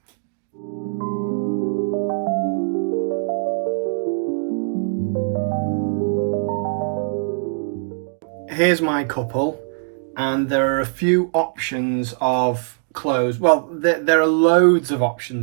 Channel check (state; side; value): silent; left; digital silence